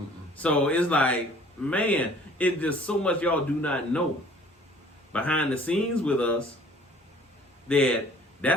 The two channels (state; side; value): normal; both; correlation 0.53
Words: So it's like, man, it's just so much y'all do not know behind the scenes with us.